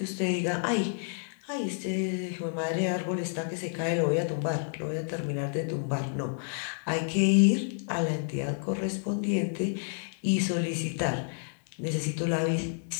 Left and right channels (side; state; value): right; silent; digital silence